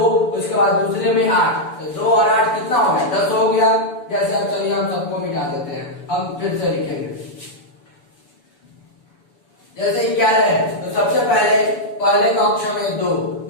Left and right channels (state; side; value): late; right; 7.0 ms